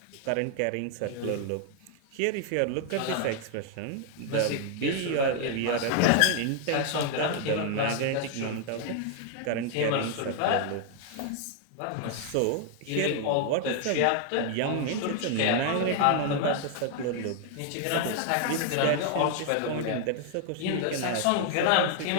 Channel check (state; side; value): different; both; correlation 0.00